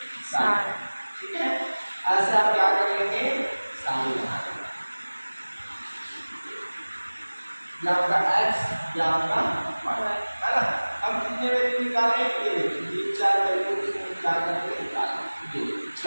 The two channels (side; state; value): both; inverted; correlation -1.00